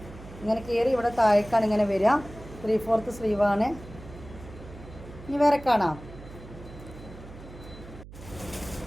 ഇങ്ങനെ കയറി ഇവിടെ താഴേക്കാണ് ഇങ്ങനെ വരിക. 3/4 സ്ലീവാണ്. ഇനി വേറെ കാണാം.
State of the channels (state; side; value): noise; right; hum, 16 dB below the sound